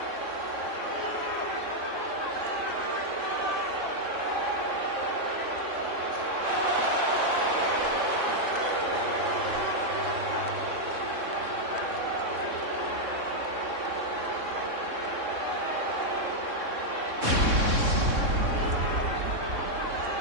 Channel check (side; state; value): left; late; 3.6 ms